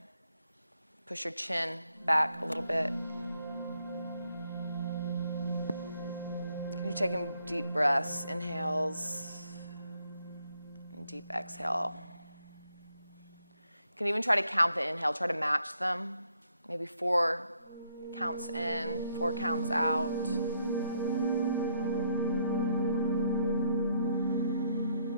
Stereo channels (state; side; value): inverted; both; correlation -0.73